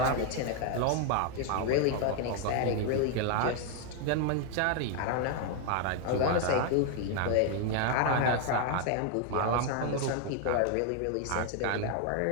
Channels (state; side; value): different; both; correlation 0.00